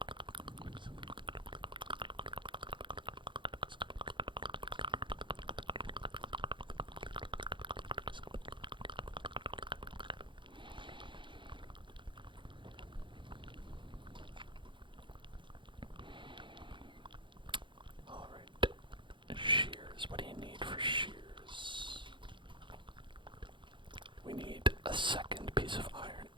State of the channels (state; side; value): late; left; 0.23 ms